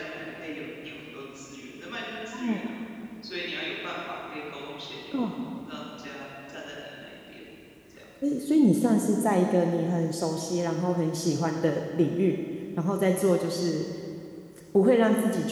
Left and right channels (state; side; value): identical; both; correlation 1.00